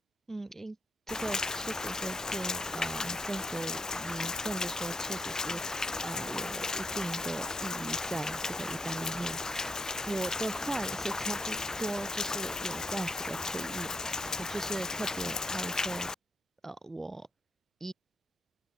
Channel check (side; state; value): both; normal; correlation 0.77